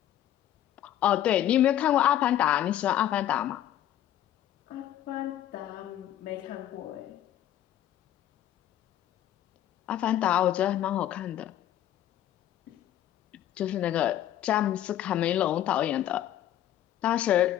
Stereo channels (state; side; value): quieter; right; 12.0 dB